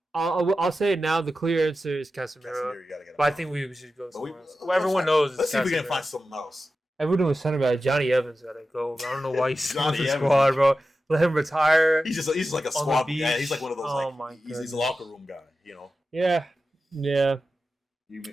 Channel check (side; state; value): both; normal; correlation 0.92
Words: I'll say it now. The clear answer is Casemiro. But I think we should go somewhere else. Everyone knows. Let's see if we can find something else. Everyone was center back. Johnny Evans gotta go. I don't know why he's on the squad, bro. Let him retire. He's just like a squad. Yeah, he's like one of those. He's a locker room guy. You know. Yeah. You